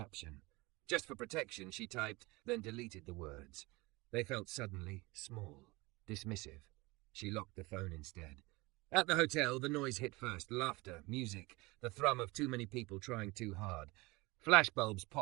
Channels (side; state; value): left; quieter; 23.4 dB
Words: Just for protection, she typed, then deleted the words. They felt suddenly small, dismissive. She locked the phone instead. At the hotel, the noise hit first. Laughter, music, the thrum of too many people trying too hard. Flashbulbs